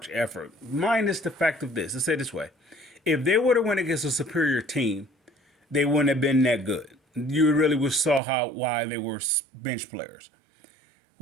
effort. Minus the fact of this. Let's say it this way. If they would have went against a superior team, they wouldn't have been that good. You really would saw why they were bench players.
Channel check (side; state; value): left; drops out; at 8.2 s